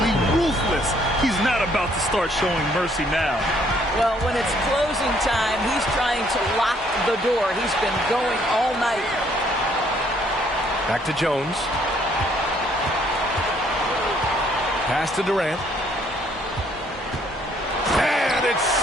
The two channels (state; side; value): normal; both; correlation 0.65